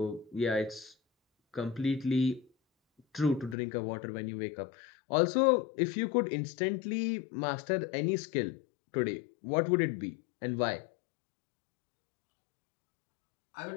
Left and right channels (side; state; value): right; drops out; at 3.6 s